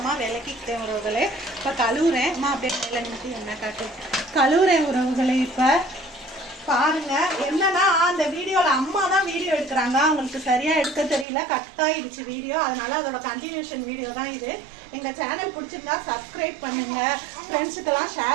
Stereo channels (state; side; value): drops out; left; at 11.2 s